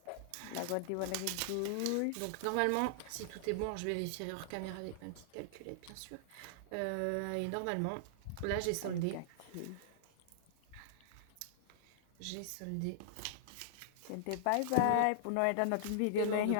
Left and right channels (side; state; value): both; different; correlation -0.01